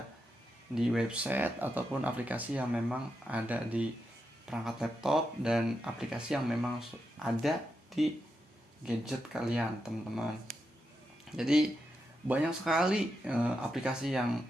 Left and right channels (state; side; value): normal; both; correlation 0.86